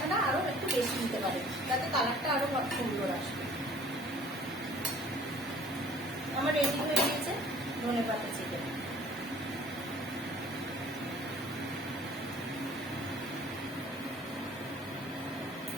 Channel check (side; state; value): both; normal; correlation 0.52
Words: আরো একটু বেশি দিতে পারেন, যাতে কালারটা আরো সুন্দর আসবে। আমার রেডি হয়ে গেছে ধনেপাতা চিকেন।